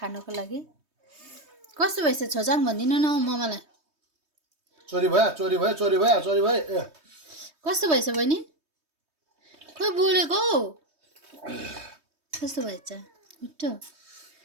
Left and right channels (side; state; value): left; late; 3.2 ms